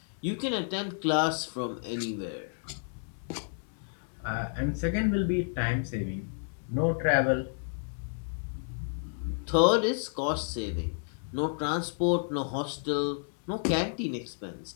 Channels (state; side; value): silent; right; digital silence